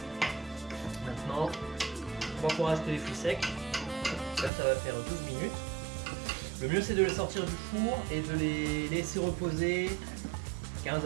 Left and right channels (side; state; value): left; drops out; at 4.5 s